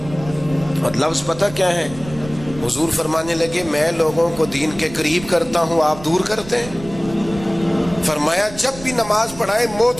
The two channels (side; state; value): right; noise; rumble, 15 dB below the sound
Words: اور لفظ پتہ کیا ہے؟ حضور فرمانے لگے میں لوگوں کو دین کے قریب کرتا ہوں، آپ دور کرتے ہیں۔ فرمایا جب بھی نماز پڑھائیں